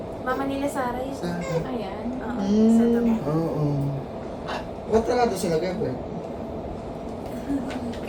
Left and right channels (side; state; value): both; identical; correlation 1.00